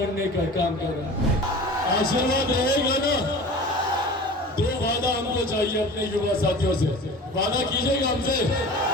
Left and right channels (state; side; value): normal; both; correlation 0.39